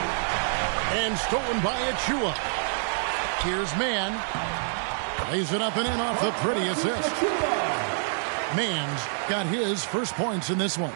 And stolen by Achiuwa. Here's Mann. Lays it up and in off the pretty assist. Mann's got his first points in this one.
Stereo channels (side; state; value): left; silent; digital silence